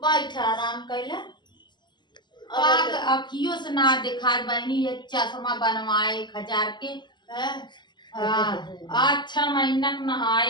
आराम कैला अखियों से ना देखा बहनी ये चश्मा बनवाए 1000 के अच्छा महीना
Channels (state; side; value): late; right; 0.21 ms